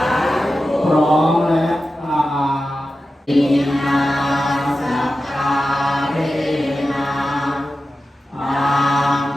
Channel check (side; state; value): both; normal; correlation 0.93